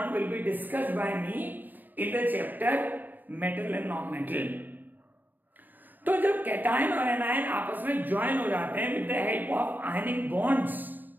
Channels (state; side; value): late; left; 0.088 ms